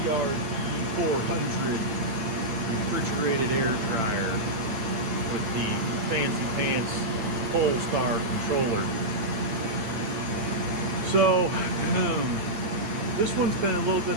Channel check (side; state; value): left; late; 8.8 ms